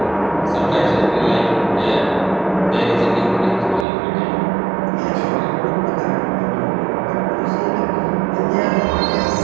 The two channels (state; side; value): drops out; left; at 3.9 s